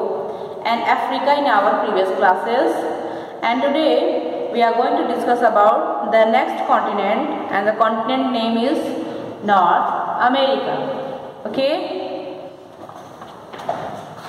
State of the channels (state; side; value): identical; both; correlation 1.00